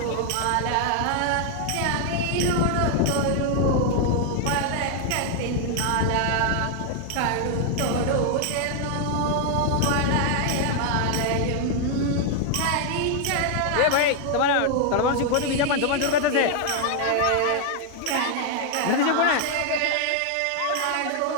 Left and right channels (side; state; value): both; different; correlation 0.00